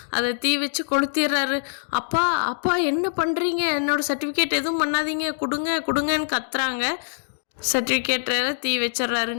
அதை தீ வச்சு கொளுத்திடுறாரு. அப்பா அப்பா என்ன பண்ணுறீங்க, என்னோட சர்டிஃபிகேட் எதுவும் பண்ணாதீங்க, கொடுங்கன்னு கத்துறாங்க. சர்டிஃபிகேட்டில் தீ வச்சிட்றாரு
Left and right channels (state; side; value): silent; right; digital silence